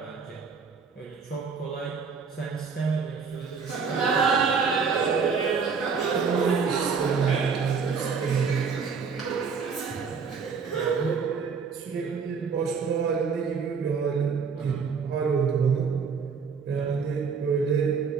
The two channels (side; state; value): left; quieter; 5.6 dB